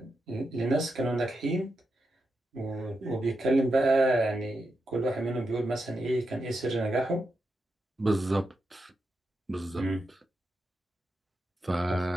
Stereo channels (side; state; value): both; normal; correlation 0.86